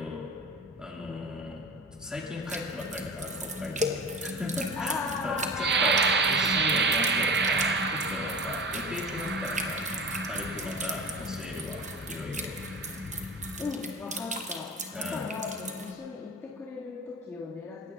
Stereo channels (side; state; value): both; normal; correlation 0.33